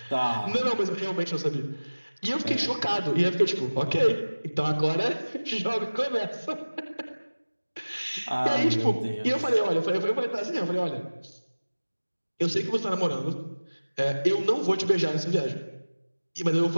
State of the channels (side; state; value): both; inverted; correlation -1.00